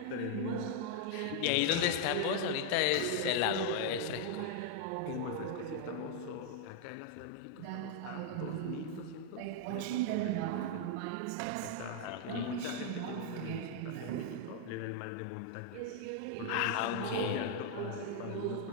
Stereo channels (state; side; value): different; both; correlation 0.00